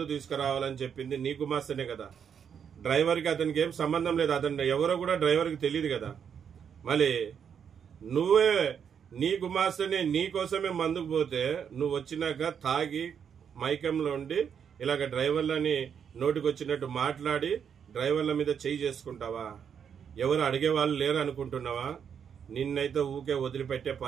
తీసుకురావాలని చెప్పింది నీ గుమాస్తనే కదా. డ్రైవర్కి అతనికి ఏం సంబంధం లేదు, అతను ఎవరో కూడా డ్రైవర్కి తెలియదు కదా. మళ్ళీ నువ్వే నీ గుమాస్తనే నీ కోసమే మందుకు పోతే నువ్వు వచ్చినాక తాగి మైకంలో ఉండి ఇలాగ డ్రైవర్లని నోటికి వచ్చినట్టు మాట్లాడి డ్రైవర్ల మీద చేయి చేసుకుంటావా? ఎవరు అడిగేవాళ్ళు లేరు అనుకుంటున్నావా? నిన్నైతే ఊకే వదిలిపెట్టే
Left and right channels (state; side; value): quieter; left; 7.6 dB